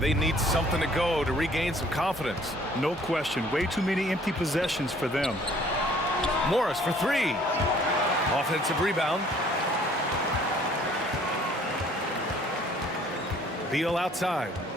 need something to go to regain some confidence. No question. Way too many empty possessions for them. Morris for three. Offensive rebound. Beal outside.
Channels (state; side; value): normal; both; correlation 0.57